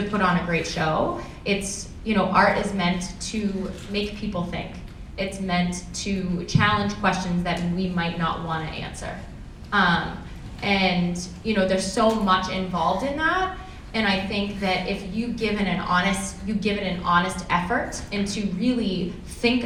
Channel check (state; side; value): identical; both; correlation 1.00